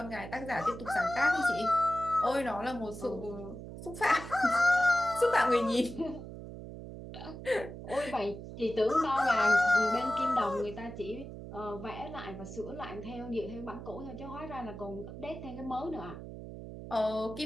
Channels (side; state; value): right; noise; hum, 11 dB below the sound